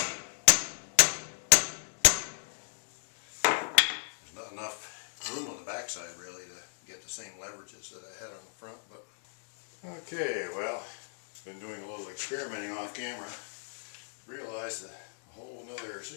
There's not enough room on the backside really to get the same leverages that I had on the front. But okay, well, been doing a little experimenting off camera. Realized a whole nother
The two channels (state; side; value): silent; right; digital silence